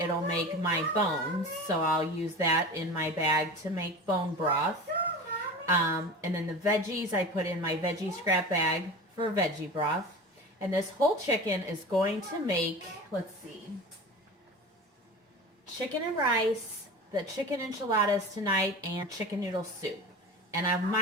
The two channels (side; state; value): both; normal; correlation 0.33